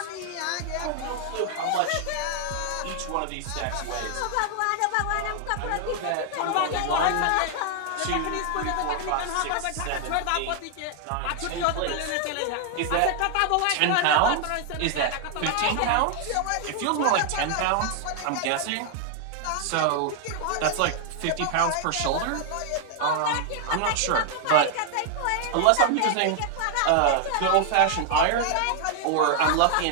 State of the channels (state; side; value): different; both; correlation 0.00